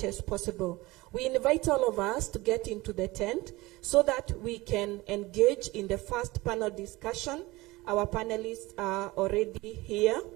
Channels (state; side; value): quieter; left; 20.8 dB